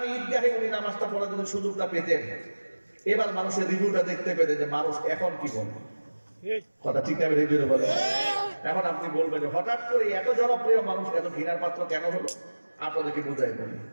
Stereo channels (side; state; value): both; inverted; correlation -1.00